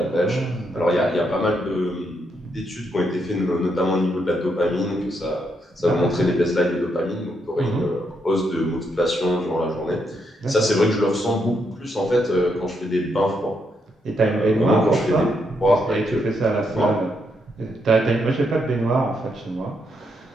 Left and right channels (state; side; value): normal; both; correlation 0.78